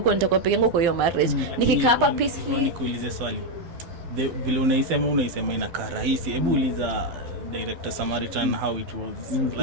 nitakuwa peke yangu kwa hiyo marriage. Nikikaa hapa peacefully. Nikuulize swali. Vile unaisema inakaa rahisi. Hebu uliza director Samaritan how it was.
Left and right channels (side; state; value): left; late; 12 ms